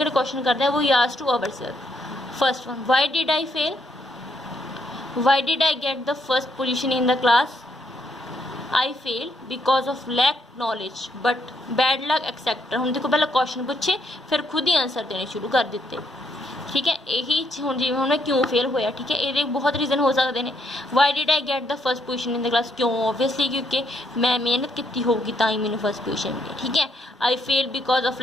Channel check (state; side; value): normal; both; correlation 0.74